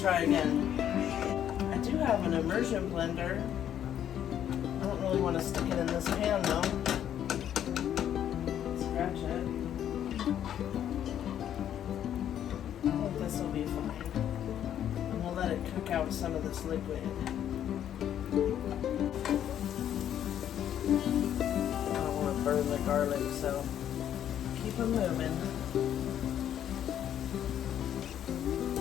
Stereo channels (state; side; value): quieter; right; 10.3 dB